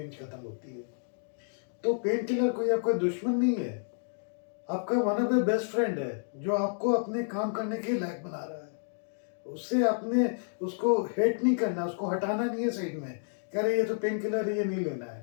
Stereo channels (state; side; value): silent; right; digital silence